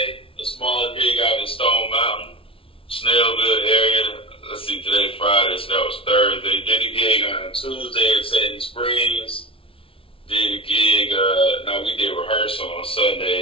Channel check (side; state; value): right; late; 0.26 ms